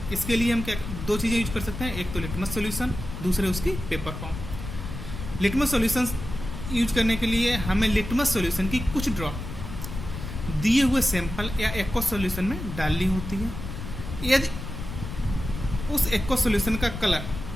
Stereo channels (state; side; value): noise; left; rumble, 8 dB below the sound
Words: इसके लिए हम क्या 2 चीज़ें यूज कर सकते हैं, एक तो लिटमस सॉल्यूशन, दूसरे उसकी paper form. Litmus solution use करने के लिए हमें लिटमस सॉल्यूशन की कुछ ड्रॉप दिए हुए सैंपल या एक्वस सॉल्यूशन में डालनी होती है। यदि उस एक्वस सॉल्यूशन का कलर